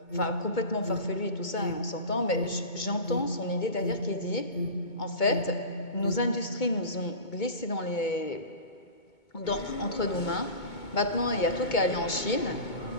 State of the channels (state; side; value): late; right; 2.2 ms